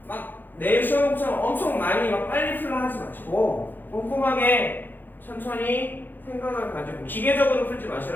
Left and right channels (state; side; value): late; right; 0.090 ms